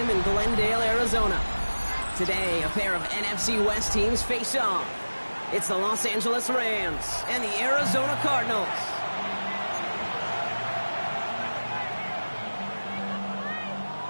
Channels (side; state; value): both; inverted; correlation -1.00